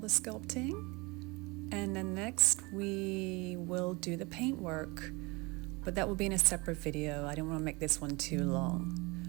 the sculpting, and then next we will do the paint work, but that will be in a separate video. I don't want to make this one too long,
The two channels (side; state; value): left; quieter; 25.8 dB